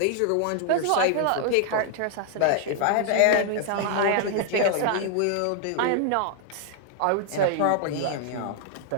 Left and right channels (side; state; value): both; different; correlation 0.00